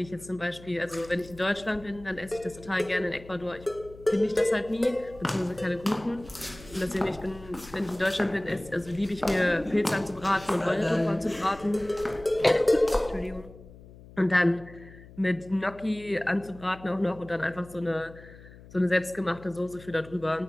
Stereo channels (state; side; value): noise; left; hum, 20 dB below the sound